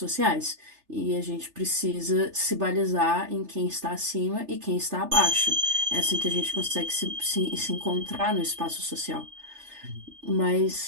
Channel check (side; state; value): left; late; 3.4 ms